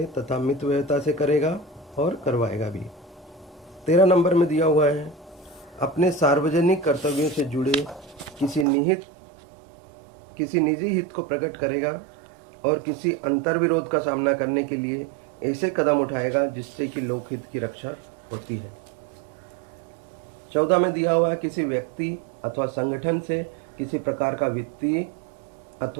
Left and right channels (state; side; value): drops out; left; at 8.7 s